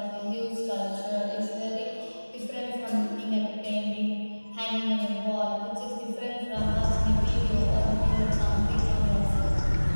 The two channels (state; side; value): inverted; both; correlation -1.00